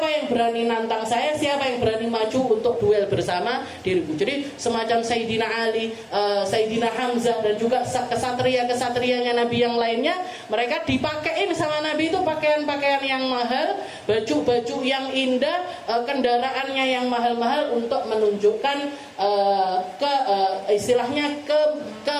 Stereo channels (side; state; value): both; identical; correlation 1.00